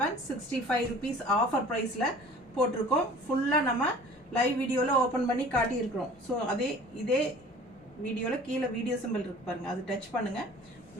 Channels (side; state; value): both; normal; correlation 0.46